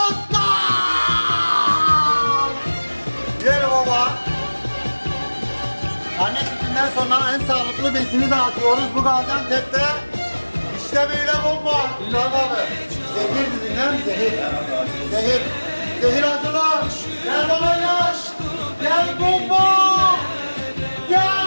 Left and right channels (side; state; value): both; inverted; correlation -1.00